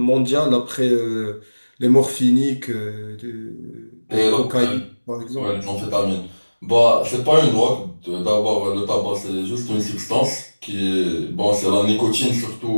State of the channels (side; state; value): both; inverted; correlation -1.00